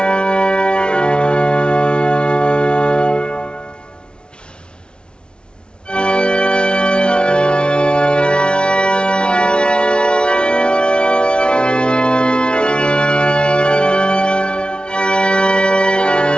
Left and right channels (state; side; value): late; right; 0.056 ms